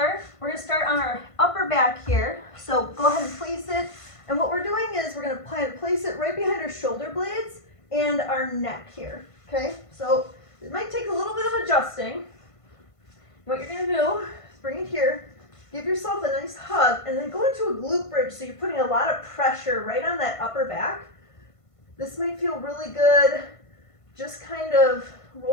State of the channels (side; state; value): right; late; 1.5 ms